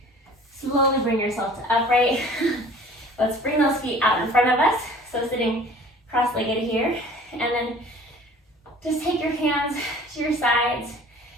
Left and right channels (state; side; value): normal; both; correlation 0.47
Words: Slowly bring yourself to upright. Let's bring those feet out in front of us. So sitting cross-legged here. And then just take your hands to your sides.